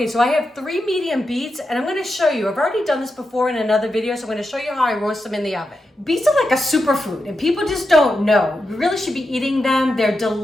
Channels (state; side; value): normal; both; correlation 0.88